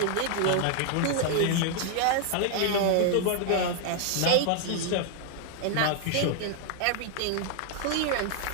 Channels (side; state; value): both; different; correlation 0.00